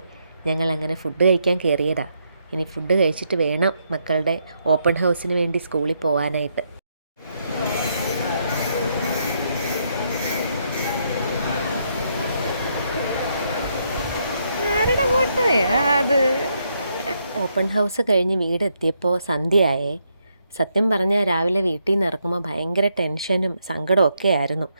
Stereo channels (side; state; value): both; inverted; correlation -0.77